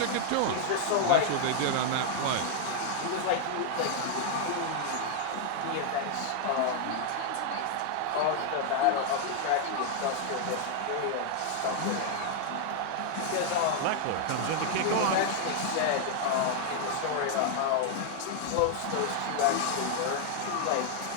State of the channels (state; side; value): different; both; correlation 0.00